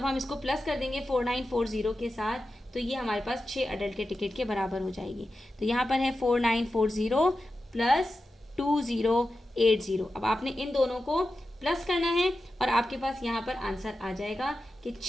हम इसको प्लस कर देंगे 4940 के साथ, तो ये हमारे पास 6 अडल्ट के टिकट के बराबर हो जाएगी। तो यहाँ पर है 4940 प्लस 2080। अब आपने इन दोनों को प्लस करना है और आपके पास यहाँ पर आंसर आ जाएगा कि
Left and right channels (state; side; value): normal; both; correlation 0.92